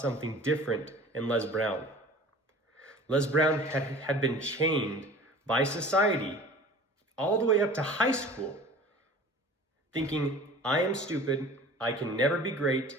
different in Les Brown. Les Brown had been chained by society all the way up to high school, thinking, I am stupid, I can never be great,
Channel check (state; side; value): normal; both; correlation 0.43